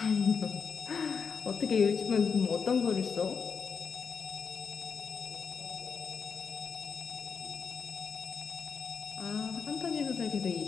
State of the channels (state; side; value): quieter; right; 6.0 dB